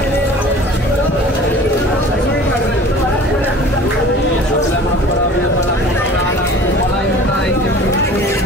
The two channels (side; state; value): both; normal; correlation 0.44